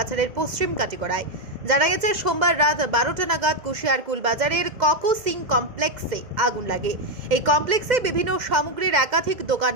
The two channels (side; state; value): left; late; 2.0 ms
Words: পশ্চিম কাটিগড়ায়। জানা গেছে সোমবার রাত 12টা নাগাদ কুশিয়ারকুল বাজারের ককো সিং কমপ্লেক্সে আগুন লাগে। এই কমপ্লেক্সে বিভিন্ন সামগ্রীর একাধিক